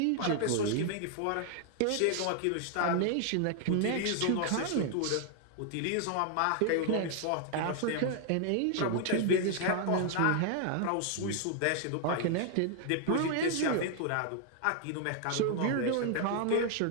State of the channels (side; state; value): both; different; correlation 0.00